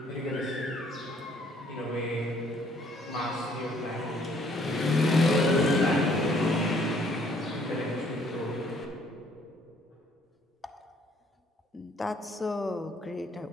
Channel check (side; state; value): both; normal; correlation 0.63